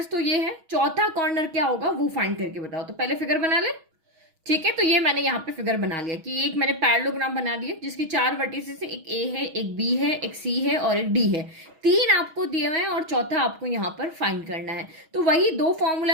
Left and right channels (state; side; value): late; left; 6.2 ms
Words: तो ये है, चौथा कॉर्नर क्या होगा वो फाइंड करके बताओ। तो पहले फिगर बना ले। ठीक है, तो ये मैंने यहाँ पे फिगर बना लिया कि एक मैंने पैरेललोग्राम बना दिया जिसकी 4 वर्टिसेस है, एक ए है, एक बी है, एक सी है और एक डी है। 3 आपको दिए हुए हैं और चौथा आपको यहाँ पर फाइंड करना है। तो वही 2